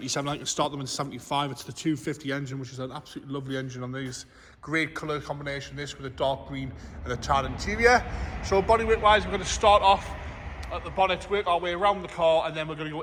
I can start them in 75. It's the 250 engine, which is an absolutely lovely engine on these. Great colour combination, this with a dark green and a tan interior. So bodyweight wise, we're going to start off at the bonnet, work our way around the car, and then we're going to go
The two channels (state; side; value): identical; both; correlation 1.00